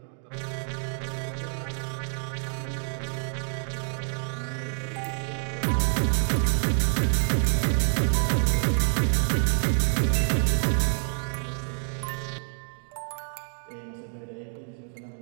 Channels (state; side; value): silent; left; 60 dB below the other